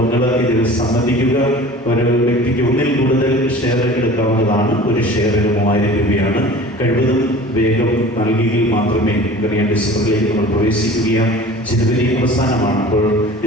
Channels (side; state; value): both; normal; correlation 0.42